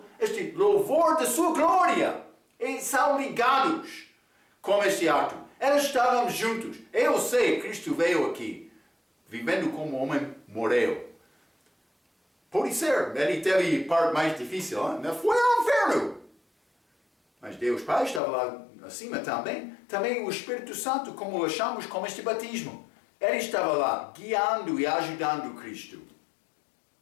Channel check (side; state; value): right; drops out; at 18.2 s